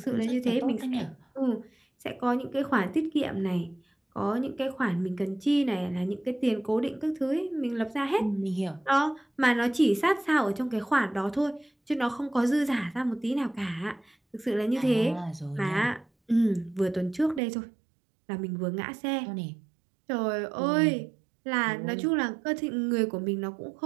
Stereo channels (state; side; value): drops out; left; at 17.4 s